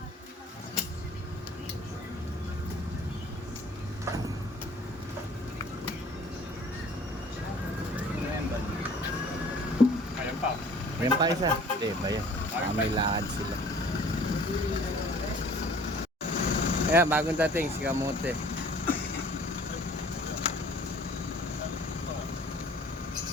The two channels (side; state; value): both; normal; correlation 0.51